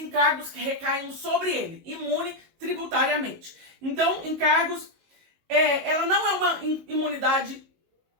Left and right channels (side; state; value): left; late; 19 ms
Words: que recaem sobre ele, imune tributariamente. Então, encargos, ela não é uma imunidade,